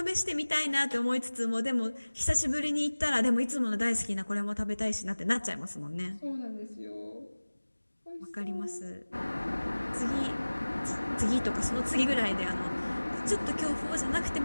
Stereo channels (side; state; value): both; inverted; correlation -1.00